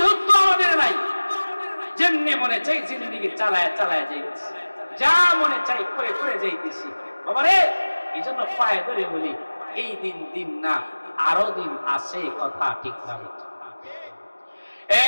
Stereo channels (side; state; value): both; inverted; correlation -1.00